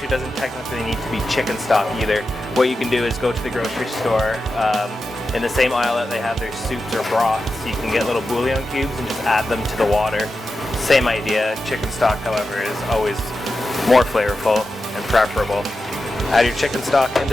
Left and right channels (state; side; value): normal; both; correlation 0.91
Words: doesn't technically need to be chicken stock either. What you can do is go to the grocery store, in the same aisle that they have their soups or broths, you can get little bouillon cubes and just add them to the water. Same idea. Chicken stock, however, is always more flavorful and preferable. Add your chicken stock